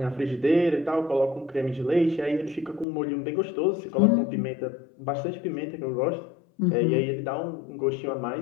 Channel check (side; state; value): right; drops out; at 2.9 s